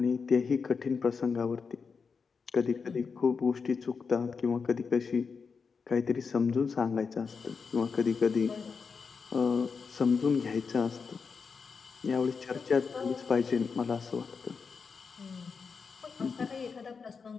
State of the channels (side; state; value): right; quieter; 5.4 dB